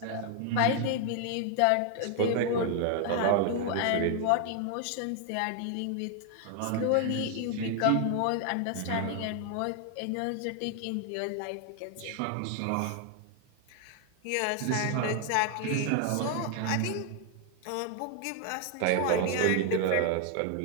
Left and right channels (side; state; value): both; different; correlation 0.00